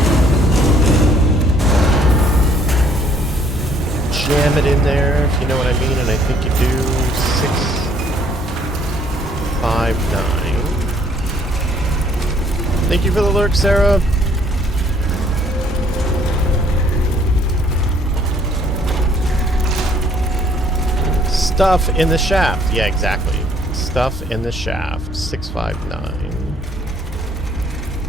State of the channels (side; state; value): both; normal; correlation 0.62